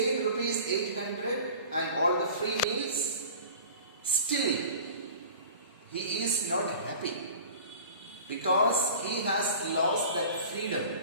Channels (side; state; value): both; inverted; correlation -0.41